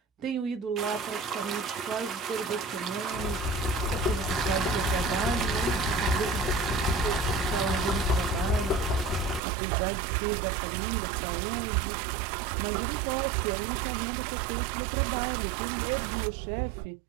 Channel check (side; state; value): left; drops out; at 9.4 s